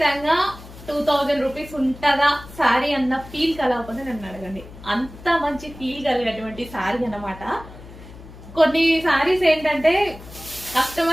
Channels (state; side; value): noise; left; hum, 17 dB below the sound